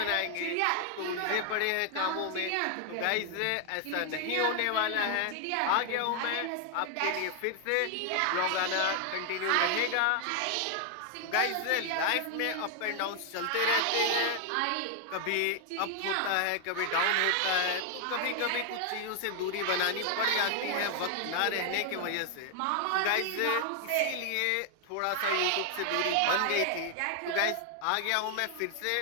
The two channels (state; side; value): different; both; correlation 0.00